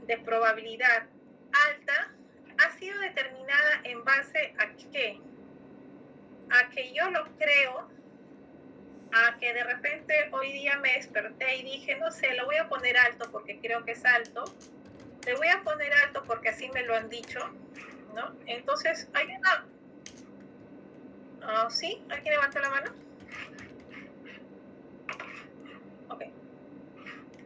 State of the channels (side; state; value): both; identical; correlation 1.00